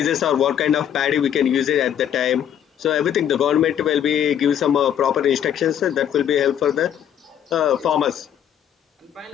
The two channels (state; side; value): quieter; right; 9.7 dB